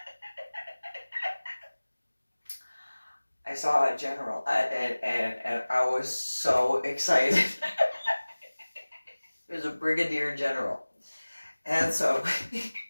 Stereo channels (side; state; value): both; inverted; correlation -1.00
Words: I saw a general, and I was so excited. It was a Brigadier General. And so,